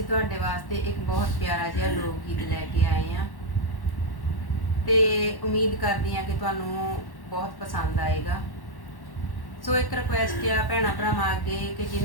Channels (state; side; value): late; right; 1.1 ms